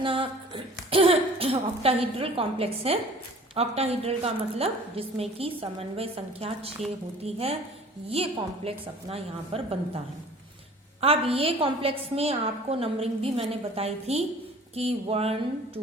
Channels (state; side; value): normal; both; correlation 0.48